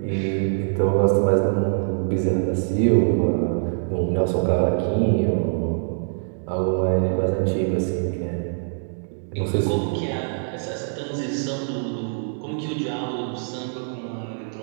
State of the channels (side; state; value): left; silent; digital silence